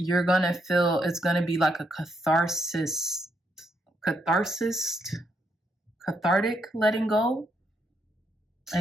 gonna feel it's gonna be like a cathartic letting go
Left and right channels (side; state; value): both; normal; correlation 0.77